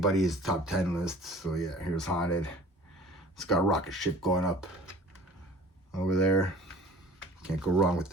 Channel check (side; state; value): both; normal; correlation 0.47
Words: top 10 list. So yeah, here's Haunted. It's got a rocket ship going up over there. Can't go wrong with